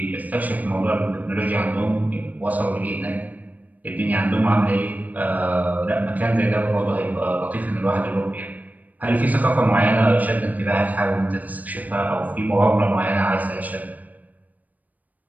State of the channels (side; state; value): left; late; 0.078 ms